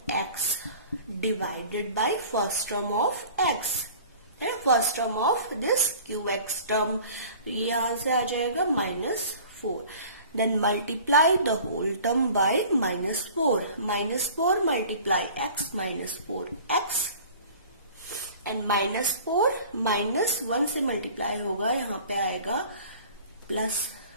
divided by first term of x है, first term of this qx term, ये यहां से आ जाएगा -4, then multiply the whole term by -4, -4 multiply x -4x, and -4 -1 से मल्टीप्लाई होगा, यहाँ पे आएगा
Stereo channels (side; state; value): both; inverted; correlation -0.46